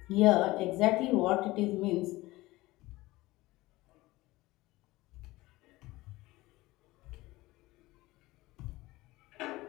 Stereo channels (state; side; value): quieter; right; 19.4 dB